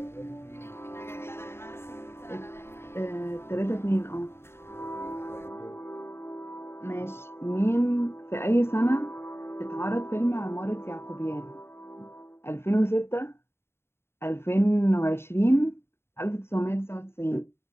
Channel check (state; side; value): late; right; 0.12 ms